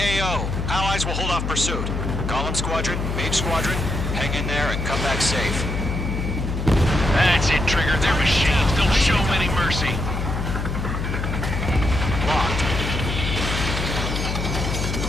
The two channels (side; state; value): left; noise; hum, 3 dB below the sound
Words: Allies will hold off pursuit. Golem Squadron, Mage Squadron, hang in there and come back safe. That's it, Trigger. They're machines. Don't show them any mercy. Locked.